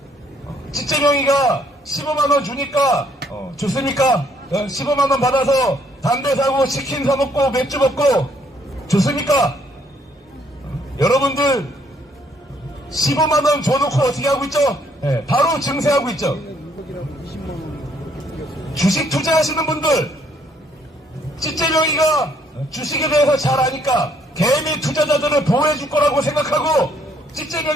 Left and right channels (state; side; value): normal; both; correlation 0.67